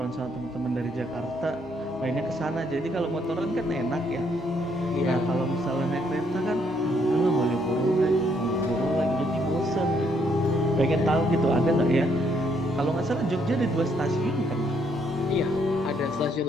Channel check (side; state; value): both; normal; correlation 0.71